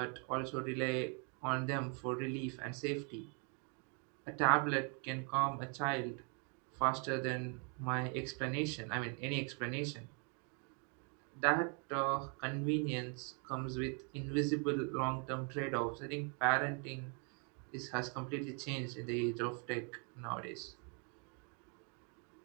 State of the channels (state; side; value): quieter; left; 37.5 dB